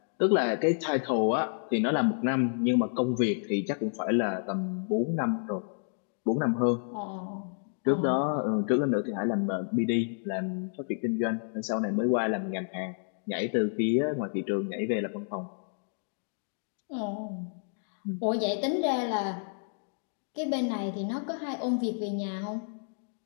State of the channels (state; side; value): silent; right; digital silence